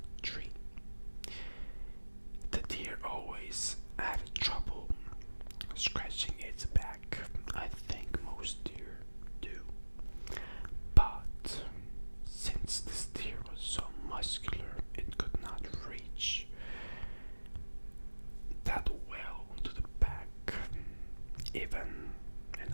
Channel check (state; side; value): inverted; both; correlation -1.00